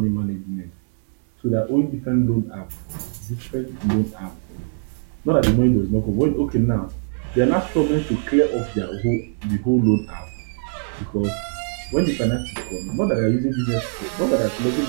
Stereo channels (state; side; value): silent; left; 64 dB below the other